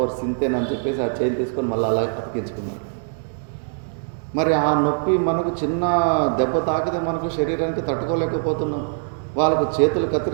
సింతేనని చెప్పేసి ఆ చేయిని తీసుకొని మళ్ళీ అలా అతికించుకున్నాడు. మరి ఆ నొప్పి మనకు చిన్న దెబ్బ తాకితే మనకు శరీరానికి తట్టుకోలేకపోతున్నాం. వాళ్ళకు చేతులు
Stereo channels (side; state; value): left; silent; digital silence